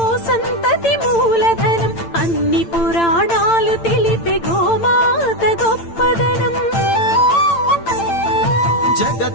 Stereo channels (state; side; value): late; right; 8.8 ms